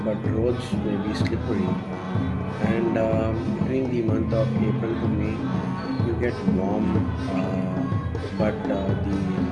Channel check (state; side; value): identical; both; correlation 1.00